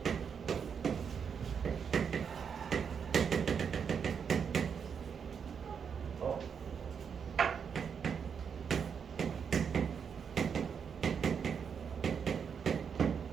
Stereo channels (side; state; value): left; quieter; 6.8 dB